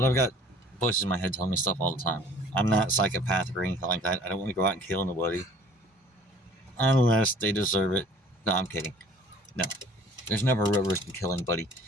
I've got voices in my head telling me stuff all the time. I'm not psychopathic or anything like that. I don't want to go out and kill nobody. Unless they deserve it. No, I'm kidding. No. There's never a real risk of killing anybody.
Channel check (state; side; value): normal; both; correlation 0.52